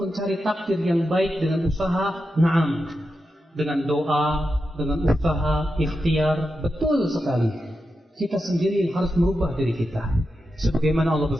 mencari takdir yang baik dengan usaha, na'am. Dengan doa, dengan usaha, ikhtiar, betul sekali. Kita sendiri yang harus merubah diri kita. Sebagaimana Allah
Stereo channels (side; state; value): both; normal; correlation 0.89